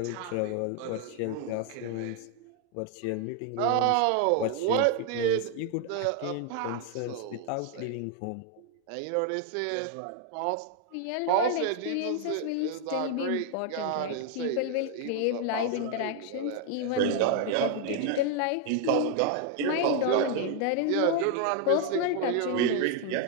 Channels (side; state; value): both; different; correlation 0.00